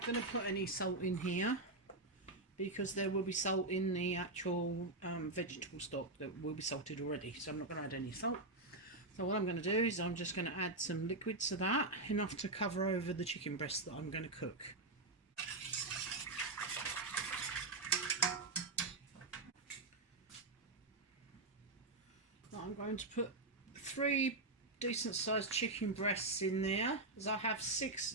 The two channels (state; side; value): quieter; left; 3.0 dB